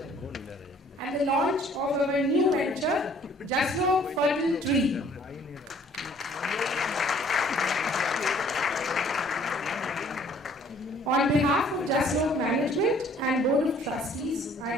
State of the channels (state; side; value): normal; both; correlation 0.58